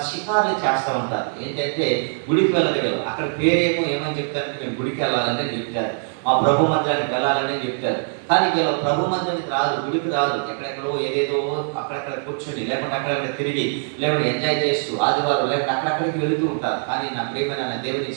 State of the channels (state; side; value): silent; left; 64 dB below the other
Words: షికారులు చేస్తూ ఉంటారు. ఏంటంటే గుడికి వెళ్ళదు వీళ్ళు. అక్కడ పేరేమో ఏమని చెప్తారంటే మేము గుడికి వెళ్ళాలని చెప్తారు, మా ప్రభు మందిరానికి వెళ్ళాలని చెప్తారు. కానీ వీళ్ళు ప్రభు మందిరానికి రాదు, గుడికి రాదు. ఎక్కడెక్కడో ఏదేదో అక్కడెక్కడ కూర్చొని, లేకుంటే అక్కడెక్కడ తిరిగి, లేకుంటే ఎంజాయ్ చేస్తూ ఆదివారం లేకుంటే అక్కడక్కడికి వెళుతూ ఉంటారు. కానీ నా ప్రియమైన దేవుని